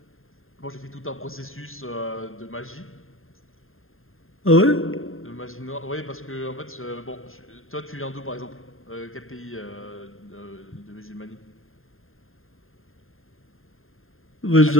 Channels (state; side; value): late; right; 0.61 ms